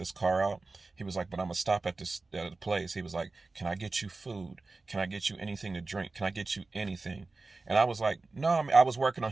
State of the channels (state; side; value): quieter; left; 3.6 dB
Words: car out. He was like, but I'm gonna stop at the place. He was like, can I get you food? Can I get you anything to drink? Can I get you anything? And I was like, no, I was working on